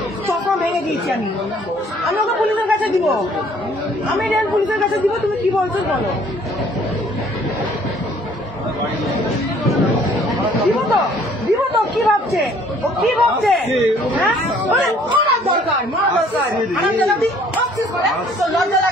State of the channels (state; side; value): normal; both; correlation 0.58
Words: চশমা ভেঙে দিয়েছি আমি ওকে পুলিশের কাছে দিব আমি রেল পুলিশের কাছে দিব তুমি কি বলছো বলো দিব তো কি ভাবছে ও কি ভাবছে হ্যাঁ মারা দরকার লজ্জা